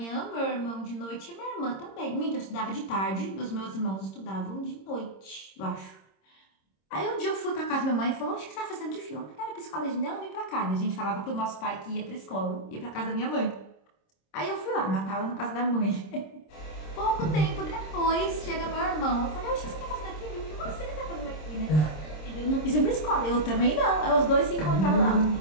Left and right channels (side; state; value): right; late; 26 ms